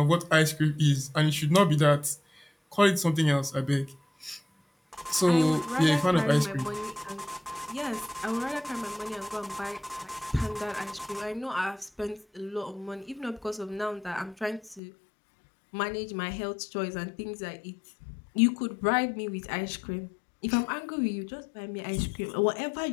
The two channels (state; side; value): drops out; right; at 14.8 s